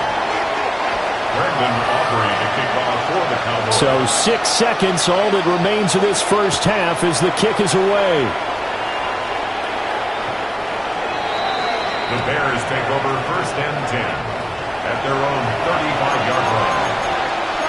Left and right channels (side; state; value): both; identical; correlation 1.00